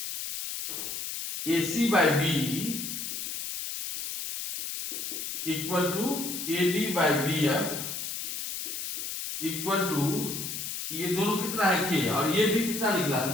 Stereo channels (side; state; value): left; noise; hiss, 5 dB below the sound